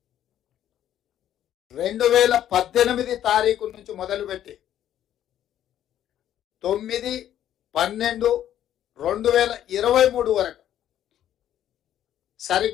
2018 తారీఖు నుంచి మొదలుపెట్టి 9, 12, 2023 వరకు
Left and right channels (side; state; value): right; quieter; 11.2 dB